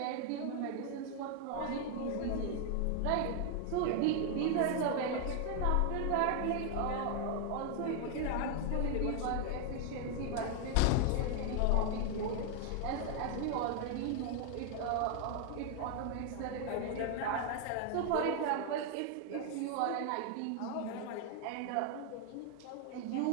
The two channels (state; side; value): different; both; correlation 0.00